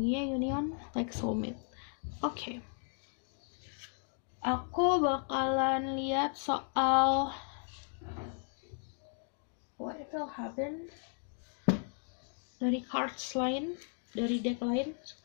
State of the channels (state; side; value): silent; right; 54 dB below the other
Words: union like soulmate. Oke. Aku bakalan lihat soal what will happen dari cards lain, dari deck lain.